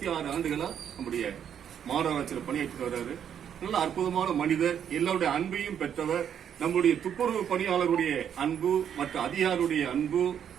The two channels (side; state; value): left; quieter; 8.8 dB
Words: ஆண்டுகளா நம்முடைய மாநகராட்சியில் பணியாற்றிட்டு வர்றாரு. நல்ல அற்புதமான மனிதர். எல்லாருடைய அன்பையும் பெற்றவர். நம்முடைய துப்புரவு பணியாளருடைய அன்பு, மற்ற அதிகாரியுடைய அன்பு,